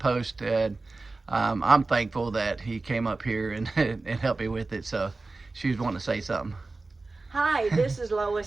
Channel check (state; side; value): quieter; left; 3.5 dB